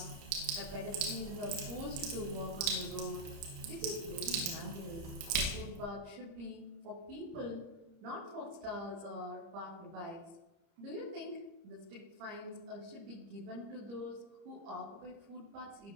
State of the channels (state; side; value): late; left; 30 ms